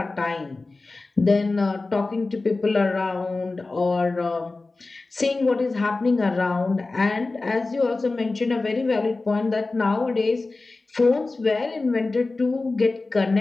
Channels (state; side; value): quieter; right; 3.4 dB